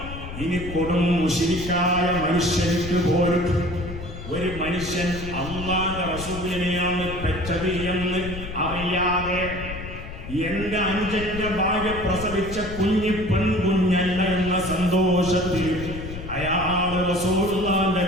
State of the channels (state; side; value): noise; left; rumble, 10 dB below the sound